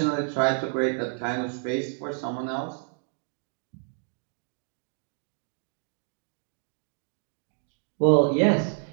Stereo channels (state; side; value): silent; left; 56 dB below the other